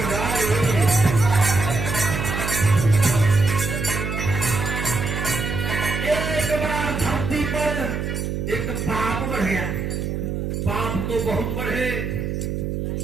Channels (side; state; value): right; noise; hum, 2 dB below the sound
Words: एक पाप बढ़ गया। पाप तो बहुत बढ़े,